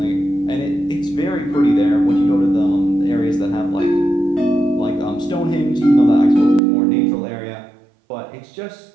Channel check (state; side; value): drops out; left; at 6.6 s